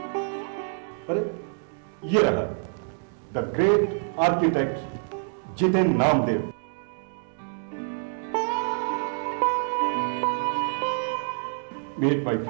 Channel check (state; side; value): silent; left; digital silence